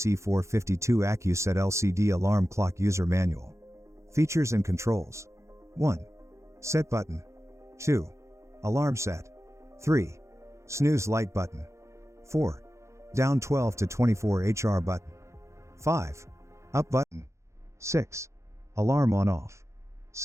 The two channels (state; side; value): late; left; 0.14 ms